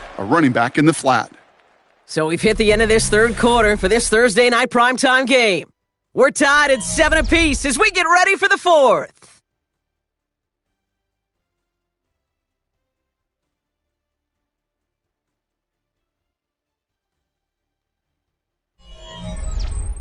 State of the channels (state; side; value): identical; both; correlation 1.00